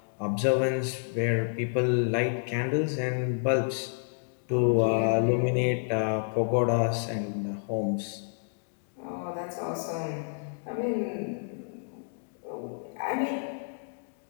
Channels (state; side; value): silent; right; digital silence